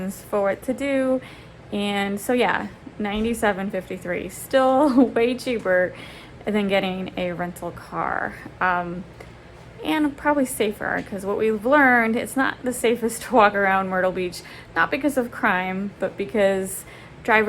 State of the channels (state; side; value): identical; both; correlation 1.00